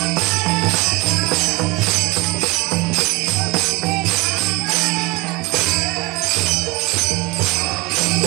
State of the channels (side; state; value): left; quieter; 22.9 dB